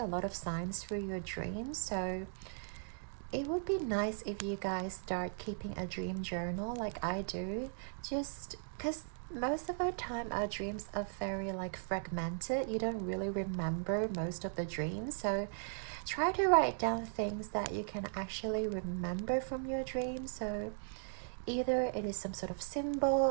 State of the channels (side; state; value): left; silent; digital silence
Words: lot of signs through your dreams, so it would be nice if you guys start keeping a dream journal like I do, just because most of our time our dreams are very like fragmented. You don't really remember most of the dreams, so try to write down things that you can actually remember from your dreams. So either it is some sort of symbol,